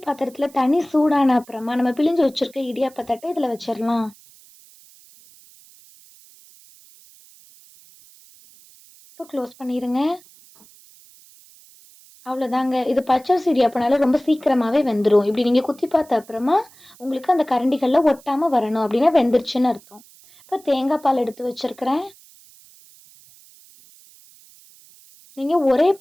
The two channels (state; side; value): noise; right; hiss, 25 dB below the sound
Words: பாத்திரத்தில் தண்ணி சூடான அப்புறமா நம்ம பிழிஞ்சு வச்சுருக்க இடியாப்ப தட்டை இதில் வச்சிடலாம். இப்போ க்ளோஸ் பண்ணிடுங்க. அவ்வளோதாங்க. இது பச்சரிசி இடியாப்பனால ரொம்ப சீக்கிரமாகவே வெந்துடும். இப்படி நீங்கள் குத்தி பார்த்த அப்புறமா உங்களுக்கு அந்த கரண்டிகளில் ஒட்டாமல் வரணும். அப்படின்னா வெந்துருச்சுன்னு அர்த்தம். இப்போ தேங்காய் பால் எடுத்து வச்சுருக்கிறேன். நீங்கள் ஒரே